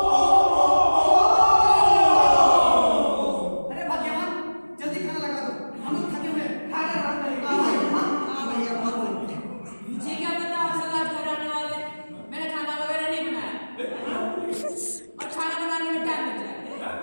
अरे भाग्यवान, जल्दी खाना लगा दो, हम लोग थके हुए हैं, खाना आराम करेंगे। हाँ भैया, बहुत बढ़िया। मुझे क्या पता आप सब आज घर आने वाले, मैंने खाना वगैरह नहीं बनाया और खाना बनाने में टाइम लग जाएगा।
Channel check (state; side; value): inverted; both; correlation -1.00